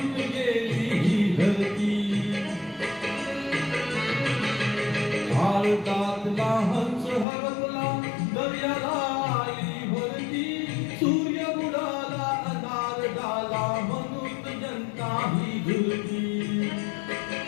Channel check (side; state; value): right; drops out; at 7.2 s